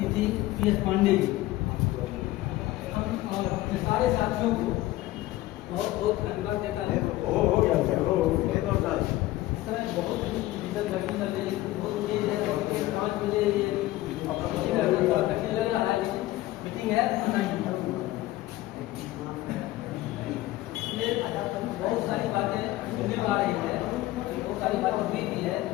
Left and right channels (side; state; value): right; quieter; 16.8 dB